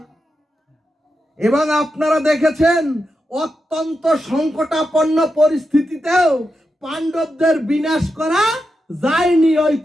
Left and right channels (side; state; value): both; normal; correlation 0.87